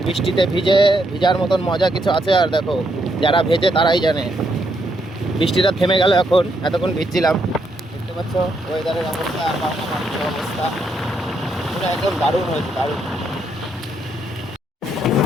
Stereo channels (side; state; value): both; normal; correlation 0.76